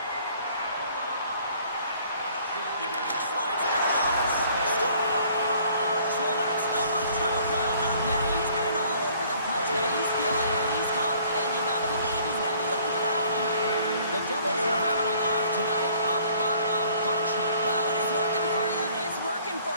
Slides it across. Scores! Well, that's number 2, Pounder. Yeah, he's been all over the puck tonight. He's feeling it and he's confident. You gotta believe he's gonna be looking for the hockey. The Devils are having a laugh tonight, up by a bunch now. Well, when it's working for you, it's working for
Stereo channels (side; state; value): both; inverted; correlation -0.57